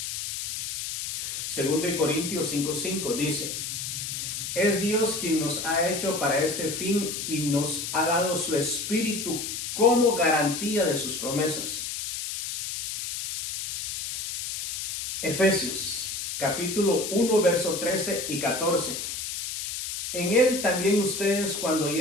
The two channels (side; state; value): left; noise; hiss, 5 dB below the sound